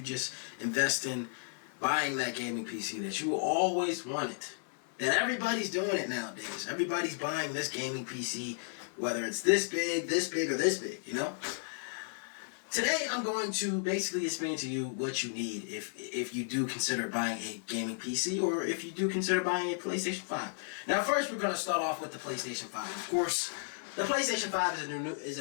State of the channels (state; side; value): silent; right; digital silence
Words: just invest in buying that gaming PC that you always wanted? That everybody's doing it nowadays. Everybody's buying this gaming PC, whether it's this big, or this big, you know? Today, I'm going to basically explain to you what you need if you do consider buying a gaming PC or if you do consider buying a PlayStation 5. Now, first, we're going to start off with the PlayStation 5. Of course, the PlayStation 5 is